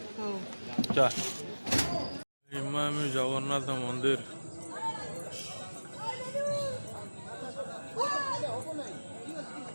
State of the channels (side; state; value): both; inverted; correlation -1.00